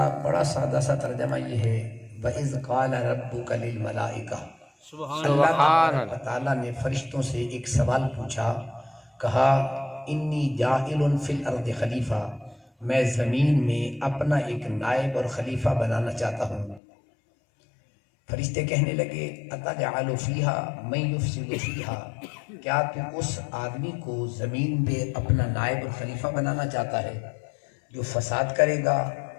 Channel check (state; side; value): drops out; right; at 16.8 s